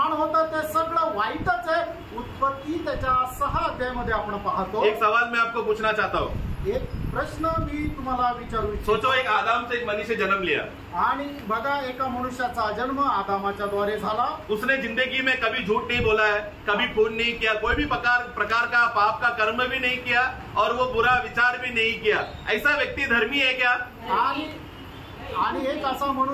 होतं ते सगळं वाईटच आहे। उत्पत्ती त्याच्या 6 अध्यायामध्ये आपण पाहतो। एक सवाल मैं आपको पूछना चाहता हूँ, एक प्रश्न मी तुम्हाला विचारू इच्छितो। सोचो, एक आदम से एक मनुष्य जन्म लिया आणि बघा, एका मनुष्याचा जन्म आदामाच्या द्वारे झाला। उसने जिंदगी में कभी झूठ नहीं बोला है, कभी खून नहीं किया, कोई भी प्रकार का पाप का कर्म भी नहीं किया और वो बुरा विचार भी नहीं किया। ऐसा व्यक्ति धर्मी है क्या? आणि एक असा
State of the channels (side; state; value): both; identical; correlation 1.00